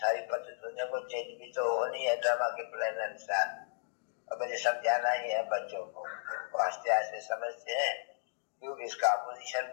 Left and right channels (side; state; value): right; silent; digital silence